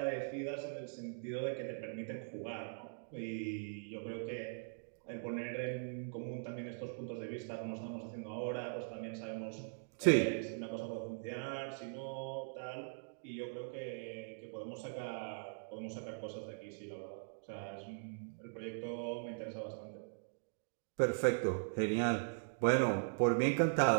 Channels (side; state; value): left; silent; digital silence